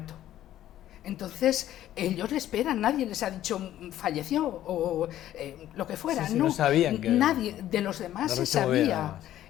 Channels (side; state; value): right; quieter; 12.7 dB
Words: Entonces ellos le esperan, nadie les ha dicho falleció o lo que fuera. No sabían que nadie de los demás se sabía,